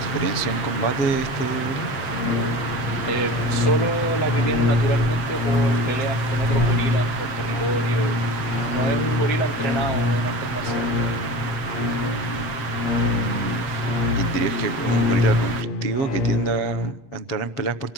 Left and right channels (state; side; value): late; right; 7.7 ms